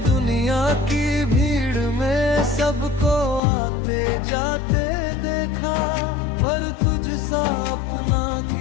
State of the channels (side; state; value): right; drops out; at 3.4 s